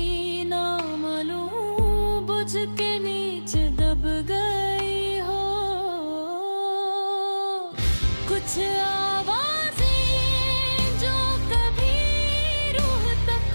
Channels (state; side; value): inverted; both; correlation -1.00